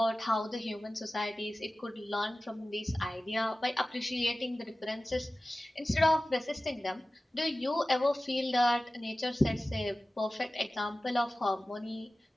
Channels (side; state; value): both; normal; correlation 0.96